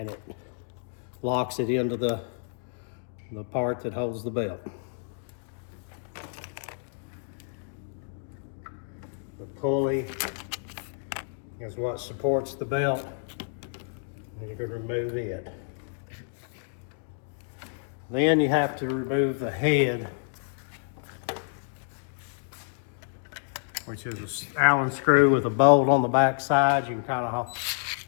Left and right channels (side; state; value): right; silent; digital silence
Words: it locks it into the part that holds the belt. The pulley is what supports the belt, and you can remove it. Then you have to remove the head, which is an Allen screw with a bolt on the back side. You can kind of